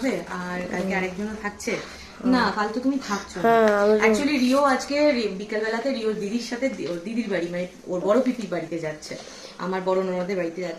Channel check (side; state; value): both; identical; correlation 1.00